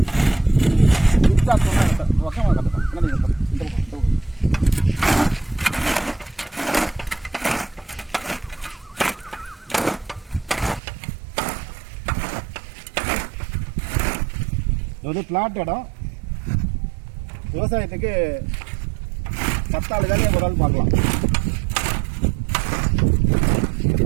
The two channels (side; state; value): left; drops out; at 10.8 s